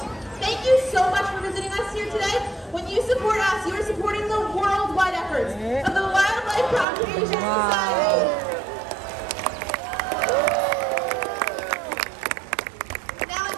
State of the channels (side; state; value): left; drops out; at 6.9 s